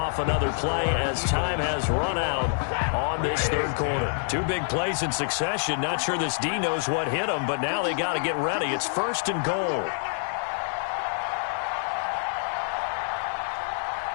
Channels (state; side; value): silent; right; digital silence